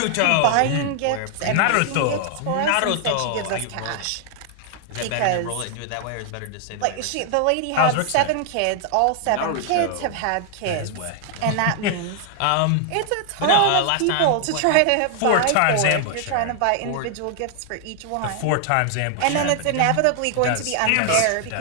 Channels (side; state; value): both; different; correlation 0.00